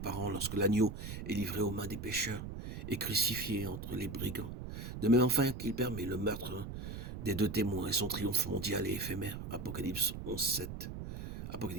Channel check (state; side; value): noise; right; rumble, 8 dB below the sound